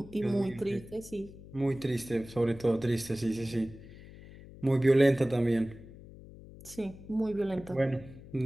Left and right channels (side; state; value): left; noise; hum, 18 dB below the sound